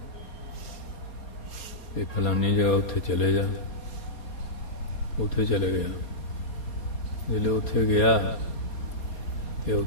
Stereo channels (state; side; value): late; right; 4.3 ms